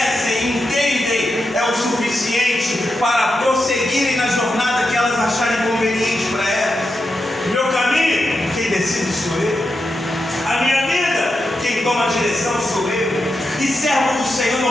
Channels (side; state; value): both; normal; correlation 0.87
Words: entendem, é o suficiente para prosseguirem na jornada que elas acharem conveniente para elas. Meu caminho, quem decide sou eu. A minha vida, quem toma a direção sou eu. E servo do Senhor